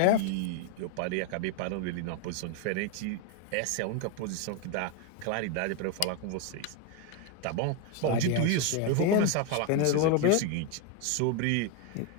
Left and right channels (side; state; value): both; different; correlation 0.01